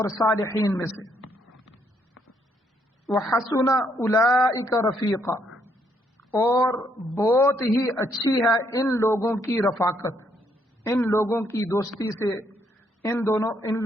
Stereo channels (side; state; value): both; normal; correlation 0.72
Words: صالحین میں سے، وحسن اولئک رفیقا، اور بہت ہی اچھی ہے ان لوگوں کی رفاقت، ان لوگوں کی دوستی سے، ان